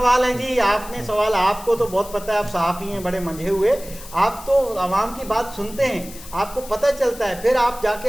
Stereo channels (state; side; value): noise; left; hiss, 17 dB below the sound